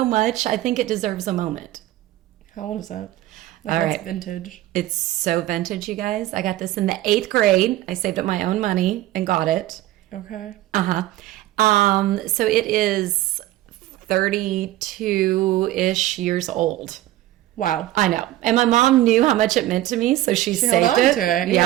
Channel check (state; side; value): quieter; left; 15.2 dB